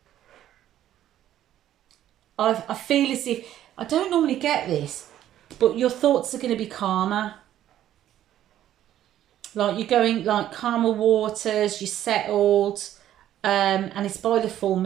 feel as if, I don't normally get this, but your thoughts are going to be calmer. Like, you're going, like, calmer waters, you're settled. And it's by the full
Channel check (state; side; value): quieter; left; 12.0 dB